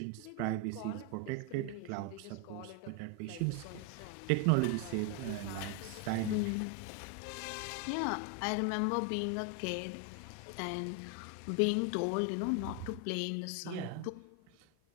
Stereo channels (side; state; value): both; different; correlation 0.01